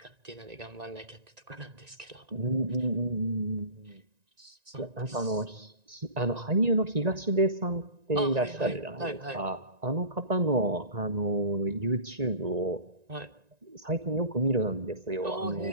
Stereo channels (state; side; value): late; left; 1.9 ms